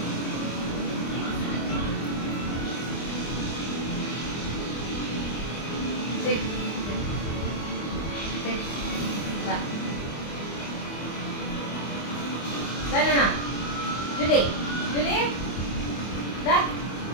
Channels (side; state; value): right; late; 25 ms